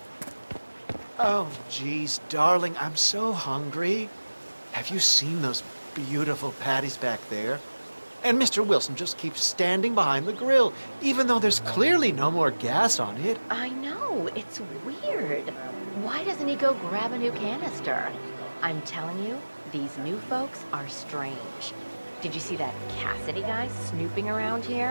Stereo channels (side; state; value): both; inverted; correlation -1.00